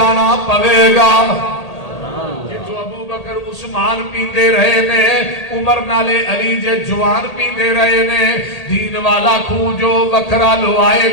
پوے گا۔ جو ابو بکر عثمان پیندے رہے نے، عمر نالے علی جے جوان پیندے رہے نے، دین والا خوہ جو وکھرا لو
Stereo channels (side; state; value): right; late; 1.8 ms